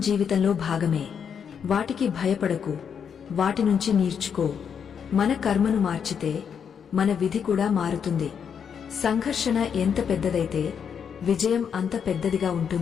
భాగమే. వాటికి భయపడకు, వాటి నుంచి నేర్చుకో. మన కర్మను మార్చితే మన విధి కూడా మారుతుంది. సంఘర్షణ ఎంత పెద్దదైతే విజయం అంత పెద్దదిగా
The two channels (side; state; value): right; quieter; 7.3 dB